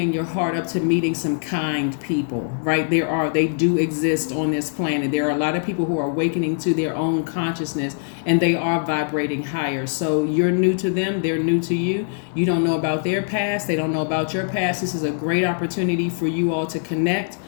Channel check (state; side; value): silent; right; digital silence